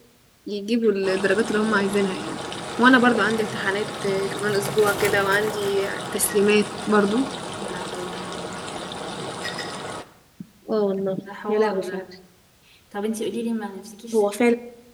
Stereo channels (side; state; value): both; identical; correlation 1.00